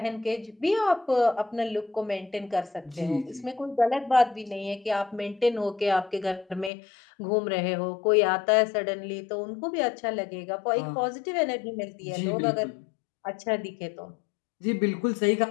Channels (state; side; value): drops out; right; at 6.7 s